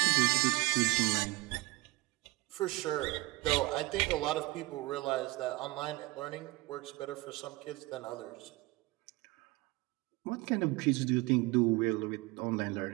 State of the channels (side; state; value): left; quieter; 21.2 dB